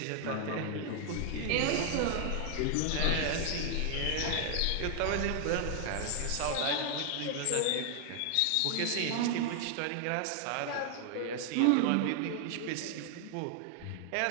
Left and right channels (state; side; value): different; both; correlation 0.00